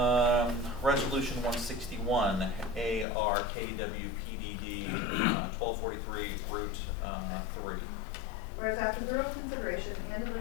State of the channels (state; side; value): drops out; right; at 3.1 s